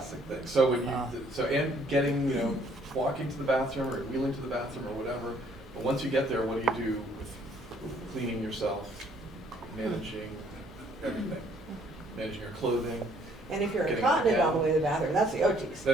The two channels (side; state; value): both; normal; correlation 0.63